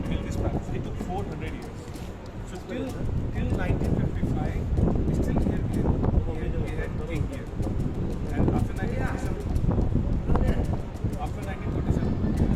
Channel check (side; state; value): both; identical; correlation 1.00